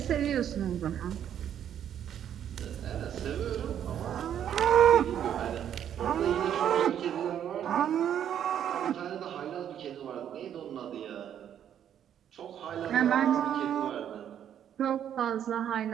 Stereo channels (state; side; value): quieter; left; 9.7 dB